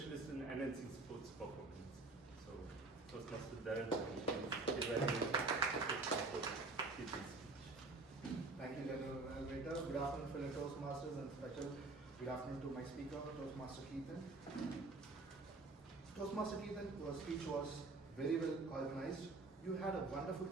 in enhancing sports performance. So, Toastmaster Dharan, please evaluate. Thank you, General Evaluator. Good afternoon, fellow Toastmasters, and special good afternoon to my speaker, Toastmaster Keithan. Toastmaster Keithan, your speech was very well organized. You had a wonderful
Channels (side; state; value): left; quieter; 3.5 dB